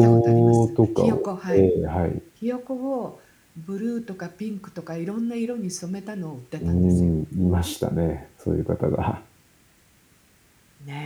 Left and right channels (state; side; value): identical; both; correlation 1.00